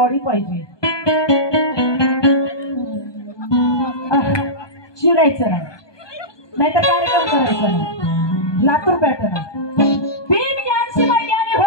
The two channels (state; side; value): late; right; 1.2 ms